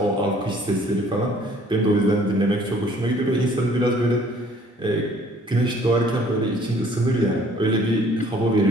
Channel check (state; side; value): normal; both; correlation 0.57